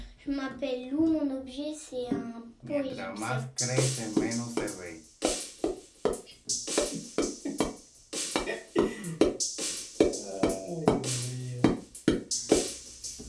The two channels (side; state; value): both; identical; correlation 1.00